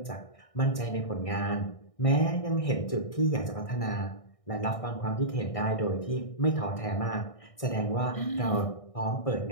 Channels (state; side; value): late; right; 1.6 ms